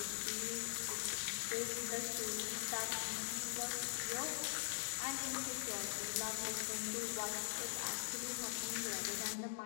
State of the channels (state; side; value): silent; right; digital silence